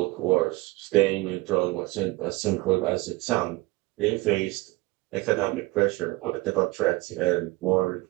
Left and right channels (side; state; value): left; quieter; 21.0 dB